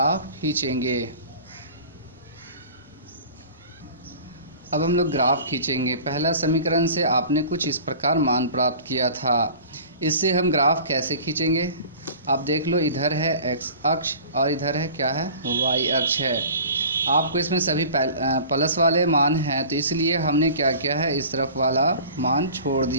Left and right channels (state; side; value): inverted; both; correlation -0.42